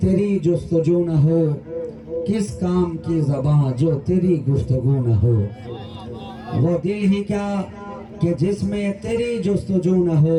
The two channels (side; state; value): both; identical; correlation 1.00